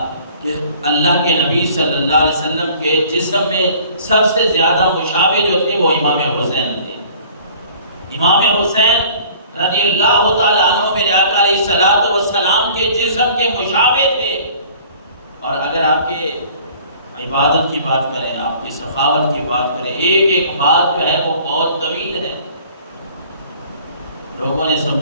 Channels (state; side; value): inverted; both; correlation -0.51